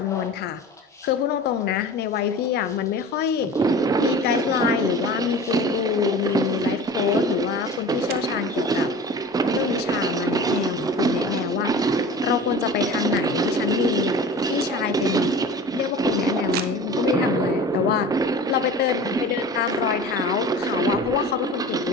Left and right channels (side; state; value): both; normal; correlation 0.38